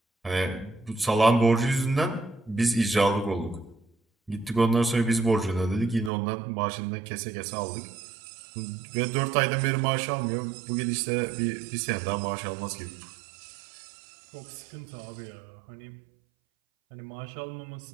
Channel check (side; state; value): left; drops out; at 6.1 s